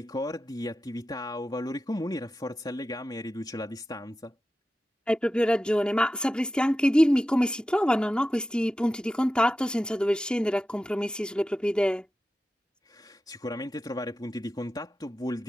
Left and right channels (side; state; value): both; normal; correlation 0.93